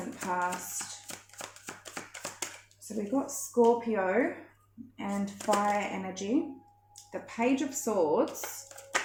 past? So we've got Scorpio and fire energy. The Page of Swords.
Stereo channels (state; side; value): identical; both; correlation 1.00